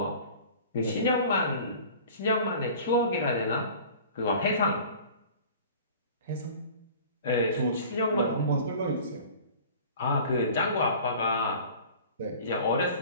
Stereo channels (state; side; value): inverted; both; correlation -0.43